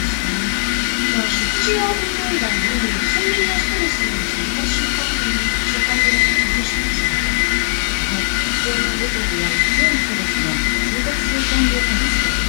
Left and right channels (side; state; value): right; silent; digital silence